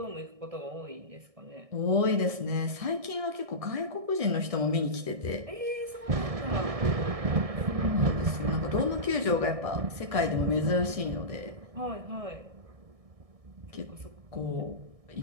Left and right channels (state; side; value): late; left; 1.6 ms